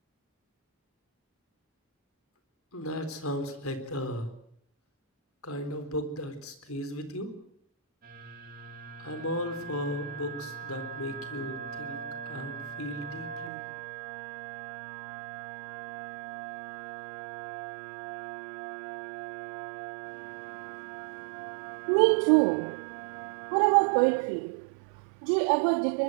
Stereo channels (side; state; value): left; drops out; at 13.5 s